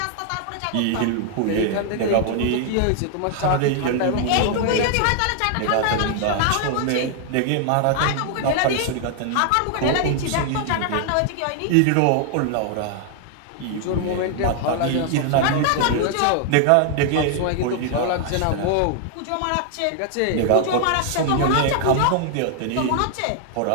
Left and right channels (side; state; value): both; different; correlation 0.00